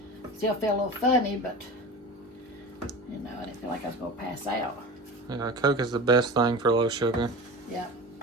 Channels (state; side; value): normal; both; correlation 0.33